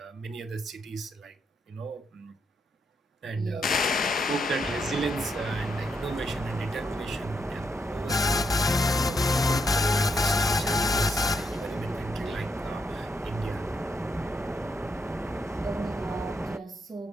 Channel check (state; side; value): normal; both; correlation 0.79